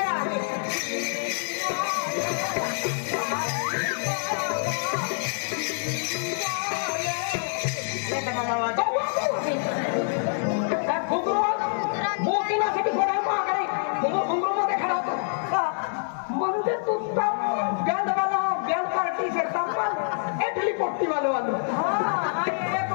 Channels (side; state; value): right; silent; digital silence